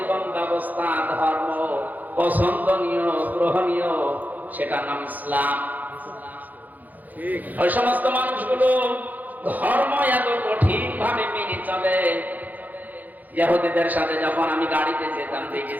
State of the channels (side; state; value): left; late; 0.082 ms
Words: ব্যবস্থা ধর্ম পছন্দনীয় গ্রহণীয়, সেটার নাম ইসলাম। ওই সমস্ত মানুষগুলো ধর্ম এত কঠিন ভাবে মেনে চলে, ইহুদিদের সাথে যখন আমি গাড়িতে যেতাম